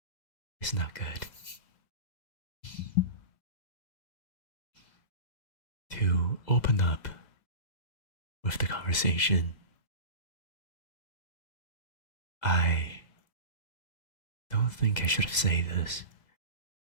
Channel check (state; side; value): late; right; 2.0 ms